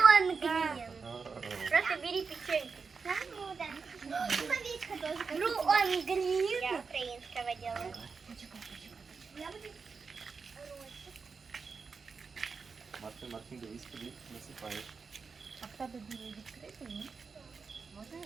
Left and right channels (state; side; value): quieter; left; 5.1 dB